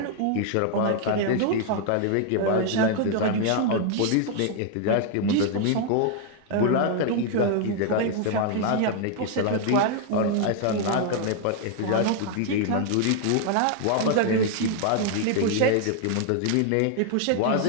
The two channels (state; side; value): different; both; correlation 0.00